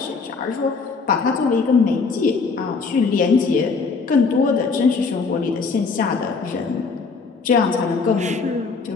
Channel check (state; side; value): quieter; right; 4.7 dB